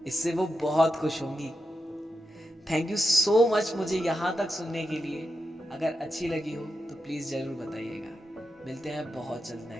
इससे वो बहुत खुश होंगी। थैंक यू सो मच मुझे यहाँ तक सुनने के लिए। अगर अच्छी लगी हो तो प्लीज़ ज़रूर बताइएगा। मिलते हैं बहुत जल्द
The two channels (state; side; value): normal; both; correlation 0.88